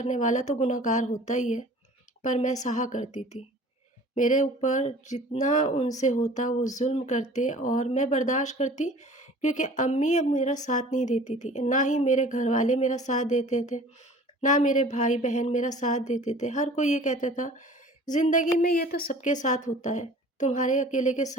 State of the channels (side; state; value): both; normal; correlation 0.46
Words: والا تو گنہگار ہوتا ہی ہے، پر میں سہا کرتی تھی۔ میرے اوپر جتنا ان سے ہوتا وہ ظلم کرتے اور میں برداشت کرتی، کیونکہ امی اب میرا ساتھ نہیں دیتی تھی، نہ ہی میرے گھر والے میرا ساتھ دیتے تھے، نہ میرے بھائی بہن میرا ساتھ دیتے تھے۔ ہر کوئی یہ کہتا تھا زندگی میں یہ تو سب کے ساتھ ہوتا ہے، تمہارے اکیلے کے